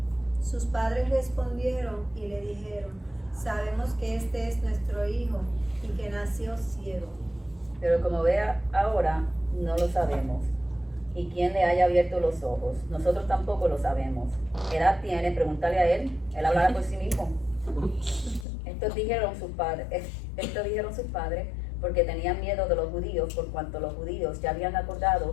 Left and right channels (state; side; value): drops out; right; at 18.4 s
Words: Sus padres respondieron y le dijeron: sabemos que este es nuestro hijo y que nació ciego. Pero como ve ahora, no lo sabemos. ¿Y quién le haya abierto los ojos? Nosotros tampoco lo sabemos. ¿Qué edad tiene? Pregúntale a él. Él hablará por sí mismo. Estos dijeron sus padres porque tenían miedo de los judíos, por cuanto los judíos ya habían